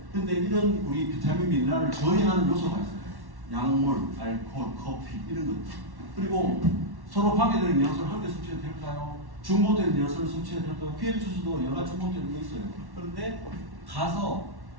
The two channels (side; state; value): left; late; 1.1 ms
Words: 근데 이런 우리 비타민 미네랄을 저해하는 요소가 있어요. 약물, 알코올, 커피 이런 것들. 그리고 서로 방해되는 영양소를 함께 섭취해도 될까요? 중복되는 영양소를 섭취해도 될까요? PM 주스도 여러 가지 중복되는 게 있어요. 그런데 가서